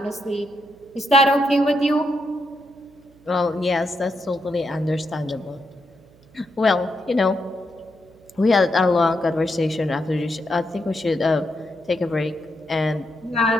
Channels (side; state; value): right; noise; hum, 28 dB below the sound